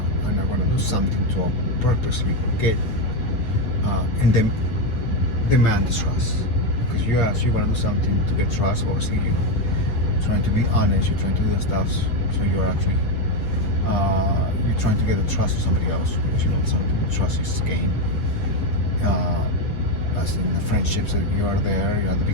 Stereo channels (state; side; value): late; right; 8.6 ms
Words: I'm not gonna do something to purposely get and then demand the trust. Because you wanna do something to get trust. Obviously, you trying to be honest. You're trying to do the stuff, so you're actually you're trying to get the trust of somebody else, because you know something trust is gained. As in the friendships that you are there, you're at the